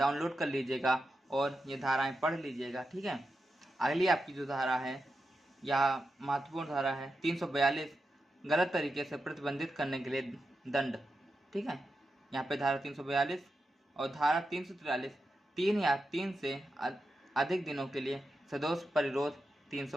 कर लीजिएगा और ये धाराएं पढ़ लीजिएगा, ठीक है। अगली आपकी जो धारा है यह महत्वपूर्ण धारा है 342 गलत तरीके से प्रतिबंधित करने के लिए दंड, ठीक है। यहाँ पे धारा 342 और धारा 343 3 या 3 से अधिक दिनों के लिए सदोष परिरोध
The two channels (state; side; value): normal; both; correlation 0.89